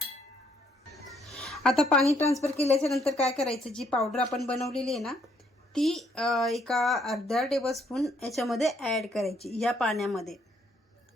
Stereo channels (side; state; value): both; normal; correlation 0.69